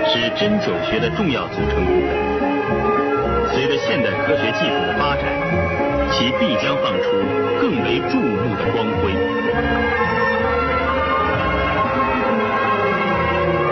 是针灸学的重要组成部分。随着现代科学技术的发展，其必将放出更为注目的光辉。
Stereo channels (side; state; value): both; identical; correlation 1.00